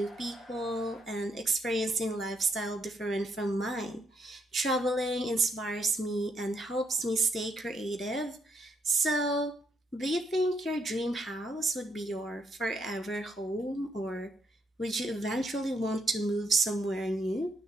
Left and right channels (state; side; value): normal; both; correlation 0.75